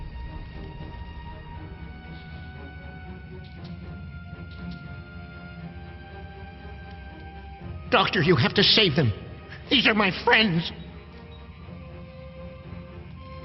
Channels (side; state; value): both; identical; correlation 1.00